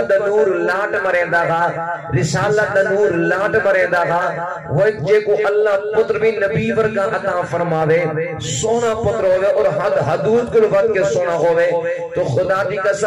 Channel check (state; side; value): identical; both; correlation 1.00